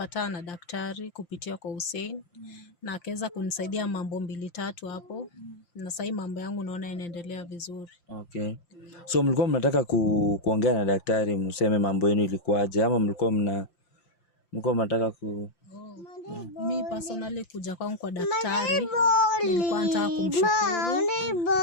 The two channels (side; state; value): right; late; 5.8 ms